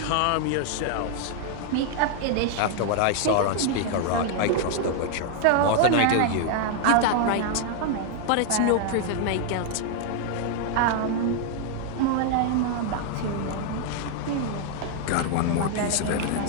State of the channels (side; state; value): both; different; correlation 0.00